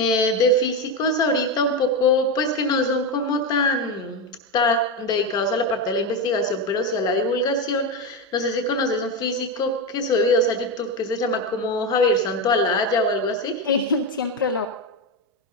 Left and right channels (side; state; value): both; normal; correlation 0.13